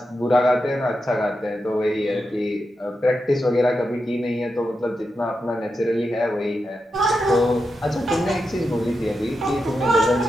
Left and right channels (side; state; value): both; normal; correlation 0.88